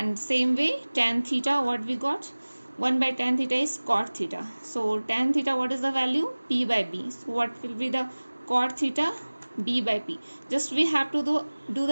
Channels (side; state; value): both; inverted; correlation -1.00